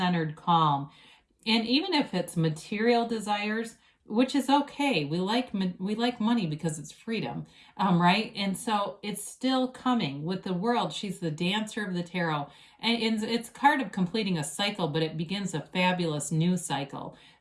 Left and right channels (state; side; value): identical; both; correlation 1.00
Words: calm. And even if it's material desires, which is okay. We like money because it's freedom, right? And so it's still coming with the World. She's the dancer of the tarot. And it's a card of completing a cycle, but it begins a fabulous new cycle.